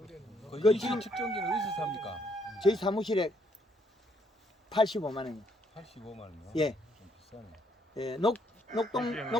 그 그 이시 지금- 측정기는 어디서 삽니까? 저희 사무실에 85만 원이요. 85만 원이요? 예. 좀 비싸네. 예,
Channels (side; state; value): both; normal; correlation 0.70